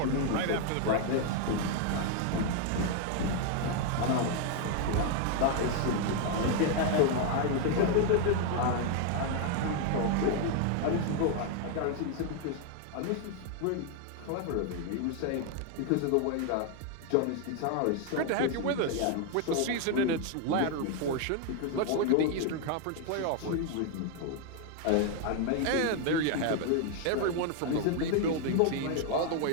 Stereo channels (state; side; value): different; both; correlation 0.00